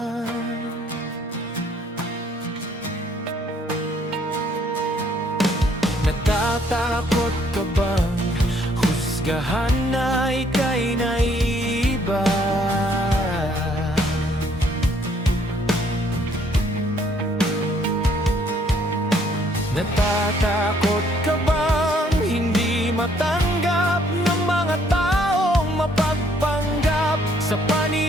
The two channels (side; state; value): both; normal; correlation 0.65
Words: Natatakot ka bang husgahan na ika'y naiiba? Natatakot ka bang hindi matanggap ng mga taong mapagpanggap sa